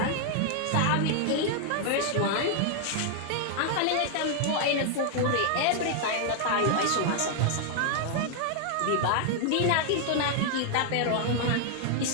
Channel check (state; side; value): different; both; correlation 0.00